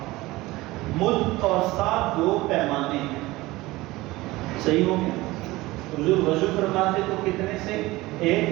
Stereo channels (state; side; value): quieter; left; 19.5 dB